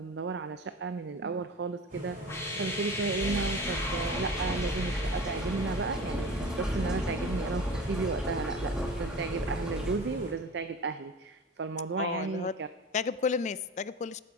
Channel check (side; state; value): both; normal; correlation 0.35